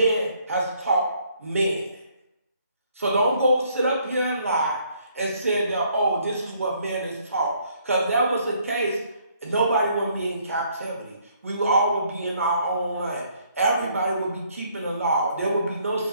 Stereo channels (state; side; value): inverted; both; correlation -0.66